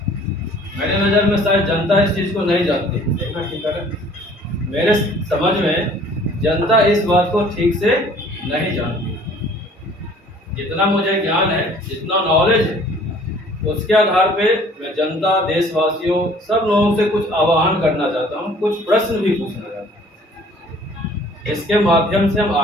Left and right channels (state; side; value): normal; both; correlation 0.53